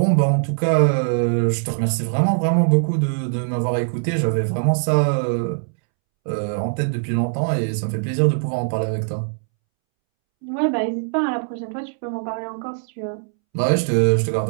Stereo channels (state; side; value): silent; left; 65 dB below the other